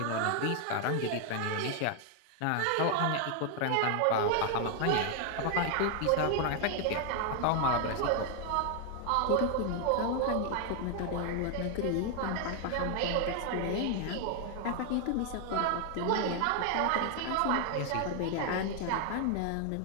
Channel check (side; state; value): both; different; correlation 0.00